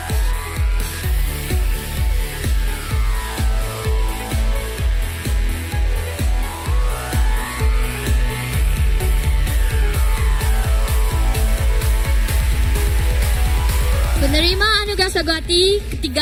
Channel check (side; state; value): both; identical; correlation 1.00